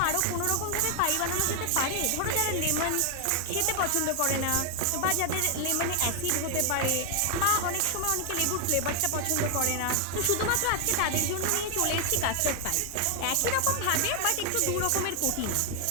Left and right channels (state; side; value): different; both; correlation 0.00